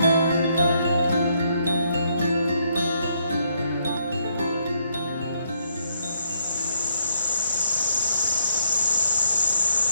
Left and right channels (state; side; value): inverted; both; correlation -0.72